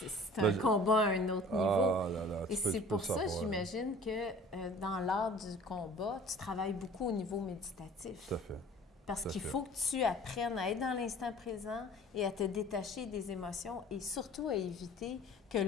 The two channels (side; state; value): both; normal; correlation 0.47